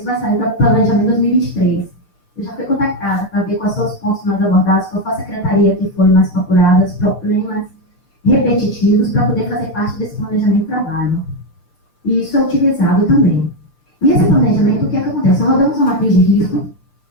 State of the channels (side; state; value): right; late; 6.9 ms